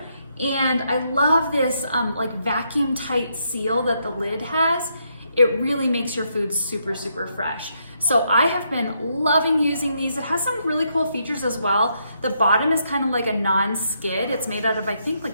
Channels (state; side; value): inverted; both; correlation -0.77